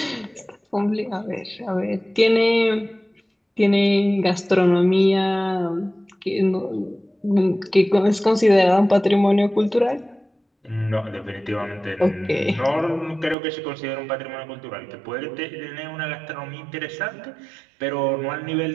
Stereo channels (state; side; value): drops out; left; at 13.4 s